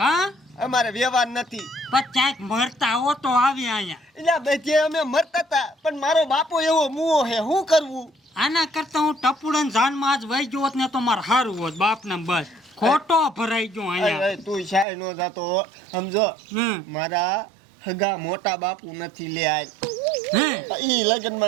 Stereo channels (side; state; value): left; drops out; at 14.9 s